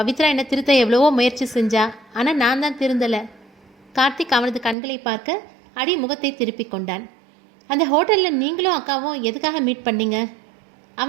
என்னை திருத்த எவ்வளவோ முயற்சி செஞ்சா, ஆனால் நான் தான் திருந்தலை. கார்த்திக் அவனது கண்களை பார்க்க அடி முகத்தை திருப்பி கொண்டான். அந்த ஹோட்டலில் நீங்களும் அக்காவும் எதுக்காக மீட் பண்ணீங்க?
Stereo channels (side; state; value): left; drops out; at 4.8 s